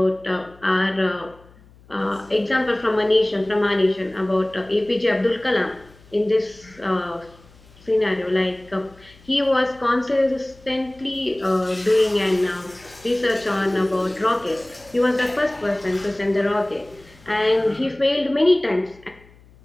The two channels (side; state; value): left; noise; hum, 26 dB below the sound